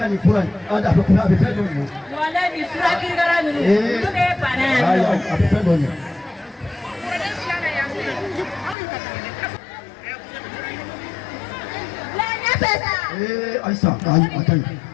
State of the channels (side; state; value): right; drops out; at 8.8 s